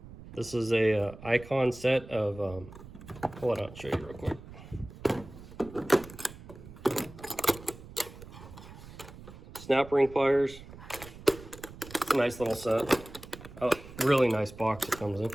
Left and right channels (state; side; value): noise; right; rumble, 16 dB below the sound